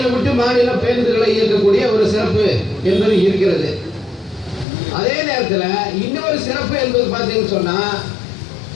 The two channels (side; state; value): right; drops out; at 4.7 s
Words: விட்டு மாநிலம் பேருந்துகளை இயக்கக்கூடிய ஒரு சிறப்பு என்பது இருக்கிறது. அதே நேரத்தில் இன்னொரு சிறப்பு என்பது பார்த்தீங்கன்னு சொன்னா,